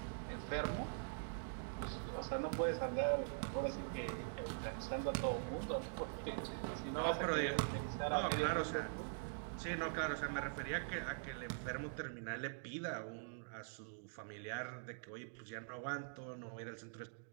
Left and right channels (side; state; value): left; silent; digital silence